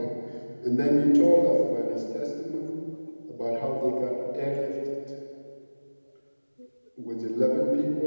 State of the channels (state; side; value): inverted; both; correlation -1.00